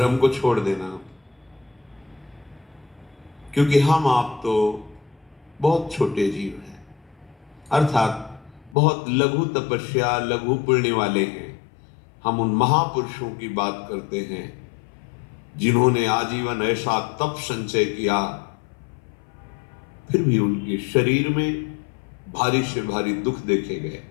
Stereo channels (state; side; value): drops out; right; at 8.8 s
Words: को छोड़ देना। क्योंकि हम आप तो बहुत छोटे जीव हैं, अर्थात बहुत लघु तपस्या, लघु पुण्य वाले हैं। हम उन महापुरुषों की बात करते हैं जिन्होंने आजीवन ऐसा तप संचय किया, फिर भी उनके शरीर में भारी से भारी दुख देखे गए।